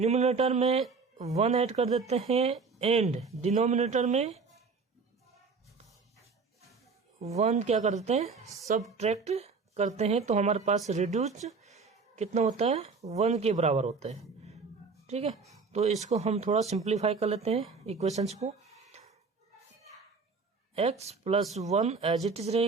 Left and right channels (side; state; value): left; quieter; 4.7 dB